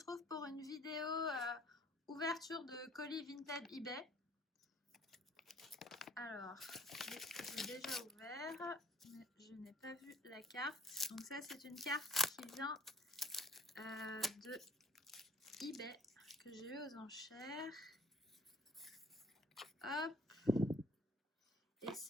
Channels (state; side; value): normal; both; correlation 0.55